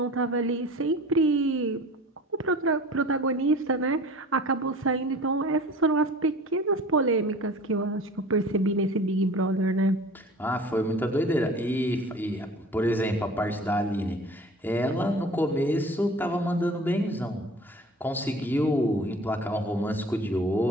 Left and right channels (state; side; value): normal; both; correlation 0.43